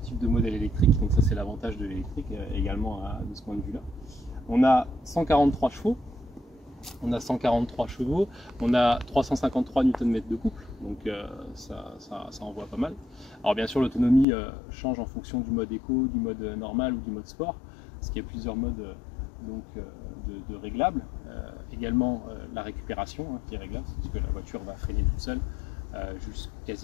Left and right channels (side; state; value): right; drops out; at 14.2 s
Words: de modèle électrique. Donc, ça, c'est l'avantage de l'électrique également de ce point de vue-là. On a 143 chevaux. On a 143 chevaux, on a 353 Nm de couple, donc ça envoie pas mal. Alors bien sûr l'autonomie change en fonction du mode éco, du mode normal ou du mode sport, parce qu'il y a plusieurs modes de réglables. Également la récupération qui est réglable, parce que la voiture va freiner toute seule